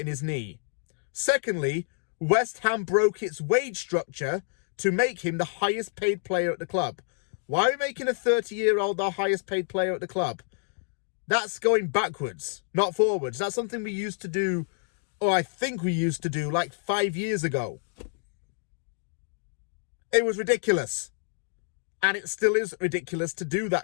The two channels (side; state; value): right; silent; digital silence